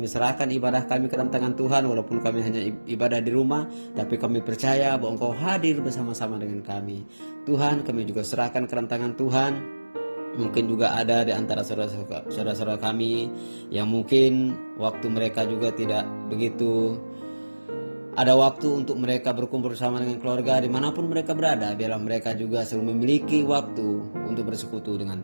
serahkan ibadah kami ke dalam tangan Tuhan, walaupun kami hanya ibadah di rumah, tapi kami percaya bahwa Engkau hadir bersama-sama dengan kami. Tuhan, kami juga serahkan ke dalam tangan Tuhan. Mungkin juga ada di antara saudara-saudara kami yang mungkin waktu mereka juga tidak begitu ada waktu untuk mereka berkumpul bersama dengan keluarga dimanapun mereka berada. Biarlah mereka juga selalu memiliki waktu untuk bersekutu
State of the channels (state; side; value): inverted; both; correlation -1.00